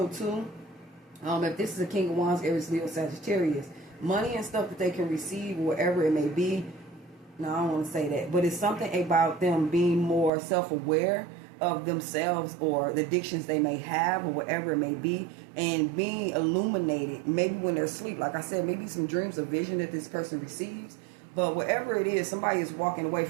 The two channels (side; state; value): left; drops out; at 10.3 s